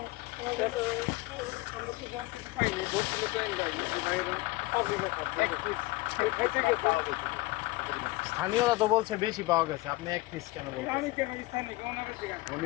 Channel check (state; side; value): quieter; right; 21.0 dB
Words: তো জানতে পাইনি, ধরছিল তো এনজাইনি যে বাইরে পাবলিক এক পিস খাইতে গেছে। স্থানীয়রা তো বলছে বেশি পাওয়া গেছে, আপনি এক পিস কেন আমি বলছেন? কেন স্থানীয় ওনাদের জিজ্ঞাসা,